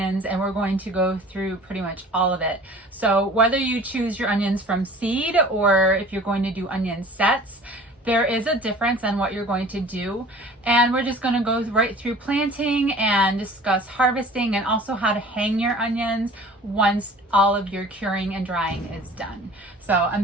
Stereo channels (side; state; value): both; normal; correlation 0.45